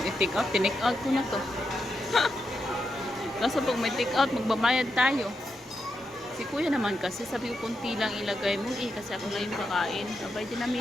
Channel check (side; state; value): both; normal; correlation 0.85